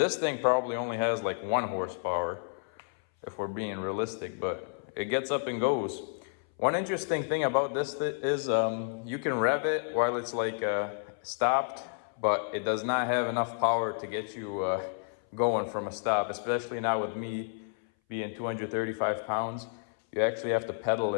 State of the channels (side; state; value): right; silent; 57 dB below the other